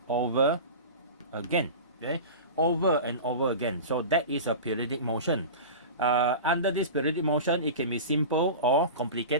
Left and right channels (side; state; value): both; inverted; correlation -0.31